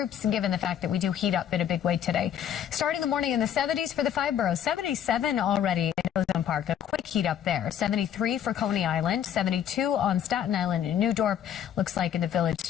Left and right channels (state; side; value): quieter; right; 9.7 dB